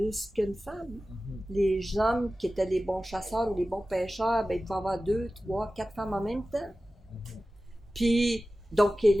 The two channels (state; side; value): normal; both; correlation 0.95